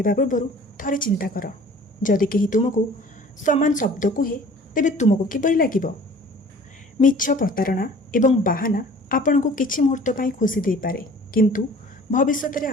ପୂର୍ବରୁ ଥରେ ଚିନ୍ତା କର, ଯଦି କେହି ତୁମକୁ ସମାନ ଶବ୍ଦ କୁହେ ତେବେ ତୁମକୁ କିପରି ଲାଗିବ? ମିଛ, ପ୍ରତାରଣା ଏବଂ ବାହାନା ଆପଣଙ୍କୁ କିଛି ମୁହୂର୍ତ୍ତ ପାଇଁ ଖୁସି ଦେଇପାରେ, କିନ୍ତୁ ଭବିଷ୍ୟତରେ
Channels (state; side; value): normal; both; correlation 0.48